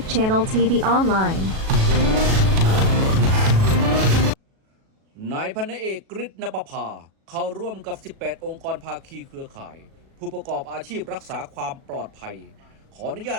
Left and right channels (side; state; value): left; late; 37 ms